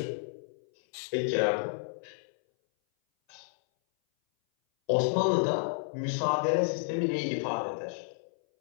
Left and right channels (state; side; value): silent; right; 57 dB below the other